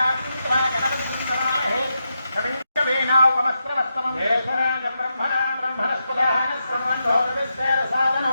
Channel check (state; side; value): inverted; both; correlation -0.85